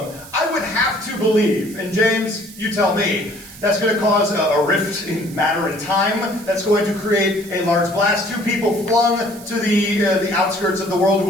I would have to believe, and James, you tell me, that's going to cause a rift in matter and time. That's going to create a large blast. 2 people flung to the outskirts of the world who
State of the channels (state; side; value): noise; right; hiss, 18 dB below the sound